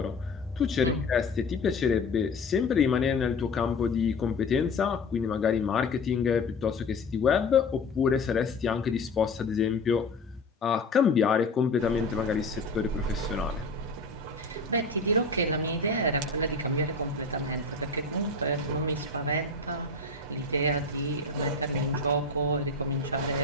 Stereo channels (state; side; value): quieter; right; 3.3 dB